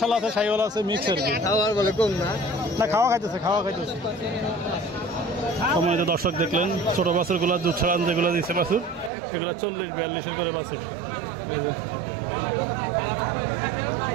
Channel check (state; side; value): drops out; left; at 9.1 s